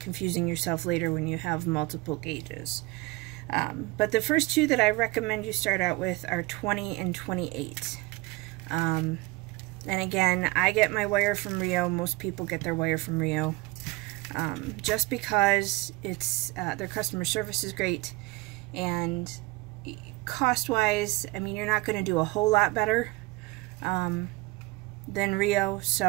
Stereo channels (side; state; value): left; quieter; 22.5 dB